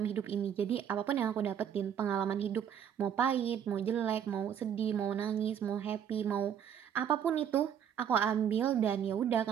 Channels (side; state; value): left; quieter; 8.8 dB